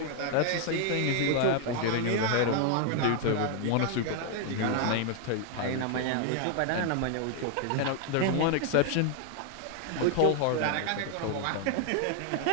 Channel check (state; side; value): different; both; correlation 0.00